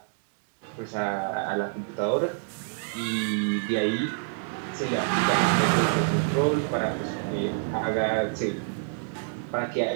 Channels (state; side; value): silent; left; digital silence